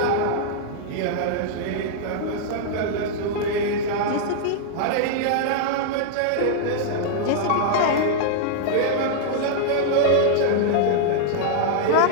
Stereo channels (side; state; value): both; different; correlation -0.01